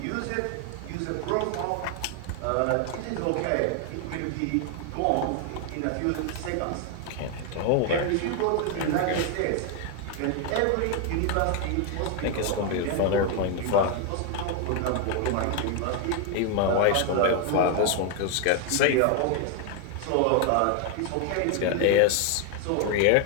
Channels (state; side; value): different; both; correlation 0.01